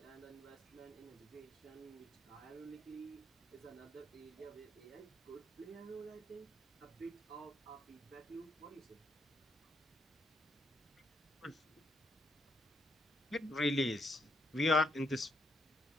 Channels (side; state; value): both; normal; correlation 0.76